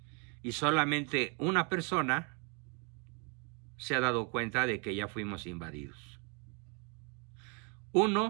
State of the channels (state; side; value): quieter; left; 33.1 dB